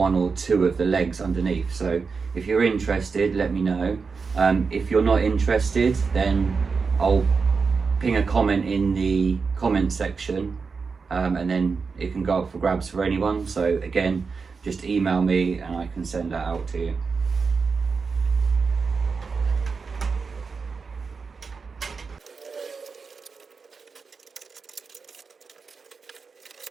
or two of the legs underneath. So if you're interested, let me know. If you're not interested, then I'll ping a comment in the comment section, and then it can go up for grabs for anyone. So again, just email me and I can send that out to you.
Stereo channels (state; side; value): quieter; left; 5.0 dB